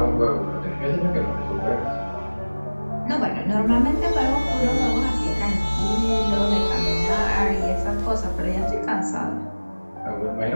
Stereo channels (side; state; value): both; inverted; correlation -1.00